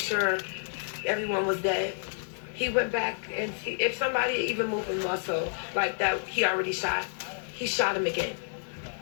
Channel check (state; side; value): silent; right; 58 dB below the other